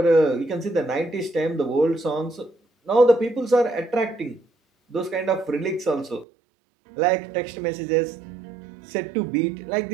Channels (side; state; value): left; drops out; at 6.2 s